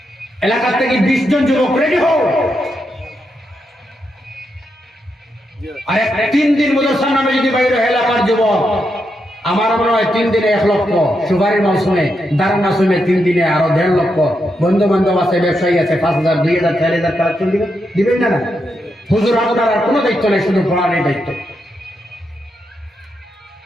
এলাকা থেকে 20 জন যুবক রেডি হও, আর 3 দিন মাদ্রাসার নামে যদি বাইরে এলাকার যুবক, আমার মনে হয় 3 দিনে 1 লক্ষ, সুপারির মৌসুমে, দারার মৌসুমে 3 দিনে আরো 1.5 লক্ষ। বন্ধু বান্ধব আছে, ব্যবসায়ী আছে, 5,000 2,000 4,000 কালেকশন দিবেন না। হুজুর আপনার আর কোনো দায়িত্ব নেই, শুধু পড়ার দায়িত্ব।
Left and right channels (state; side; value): normal; both; correlation 0.83